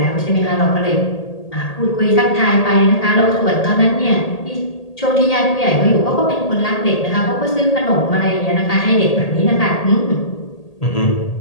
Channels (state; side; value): late; right; 1.8 ms